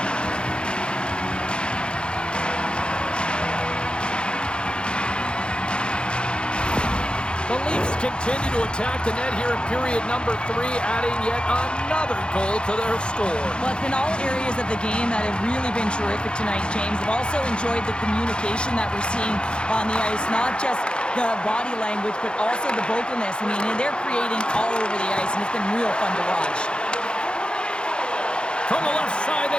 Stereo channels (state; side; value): late; right; 0.053 ms